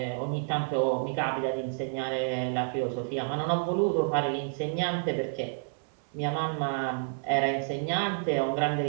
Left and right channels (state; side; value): silent; left; 58 dB below the other